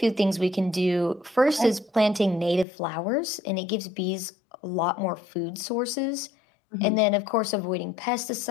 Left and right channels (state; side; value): drops out; right; at 2.7 s